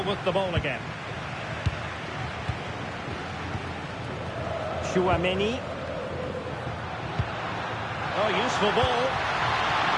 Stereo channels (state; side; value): identical; both; correlation 1.00